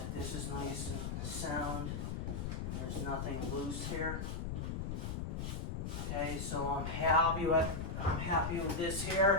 this is nice and sound and there's nothing loose here. Okay, so I'm happy with this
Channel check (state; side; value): noise; left; rumble, 3 dB below the sound